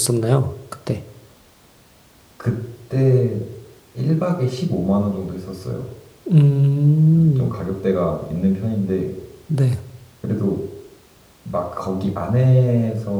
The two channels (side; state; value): both; identical; correlation 1.00